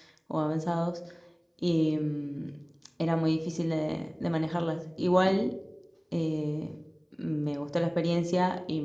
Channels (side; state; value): both; identical; correlation 1.00